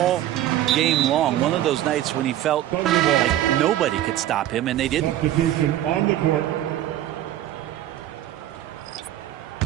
game long. One of those nights when he felt like nobody could stop him, and they didn't. Substitution on the court.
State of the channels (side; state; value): left; quieter; 13.0 dB